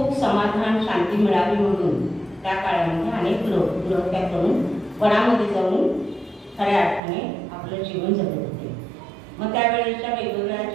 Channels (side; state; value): left; drops out; at 7.0 s